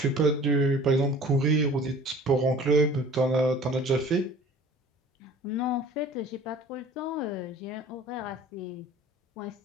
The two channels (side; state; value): both; normal; correlation 0.46